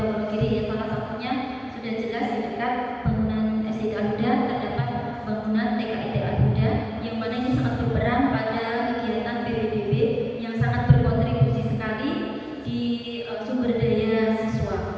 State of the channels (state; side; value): identical; both; correlation 1.00